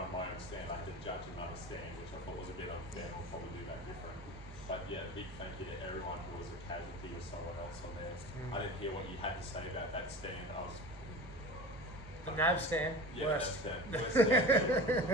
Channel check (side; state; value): left; noise; rumble, 20 dB below the sound